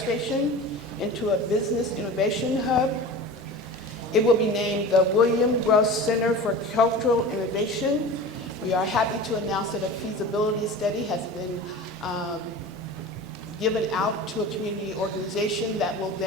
into a business innovation hub. It will be named the William Gross Center for Cultural Innovation. We are happy to announce that a feasibility study has been given out to a community organization that will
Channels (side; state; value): both; normal; correlation 0.34